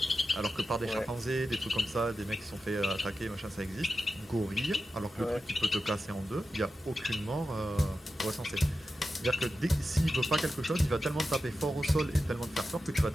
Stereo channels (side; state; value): both; normal; correlation 0.91